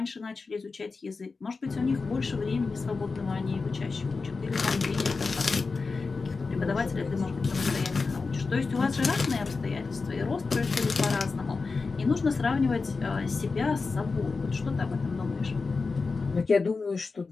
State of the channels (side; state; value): right; quieter; 4.3 dB